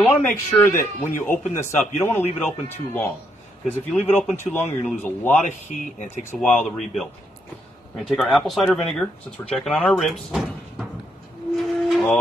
want to make sure that when you open this up, you don't want to leave it open too long. Because if you leave it open too long, you're going to lose a lot of heat and it takes a while to rebuild. We're going to take our apple cider vinegar, since we're checking on our ribs.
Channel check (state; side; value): normal; both; correlation 0.76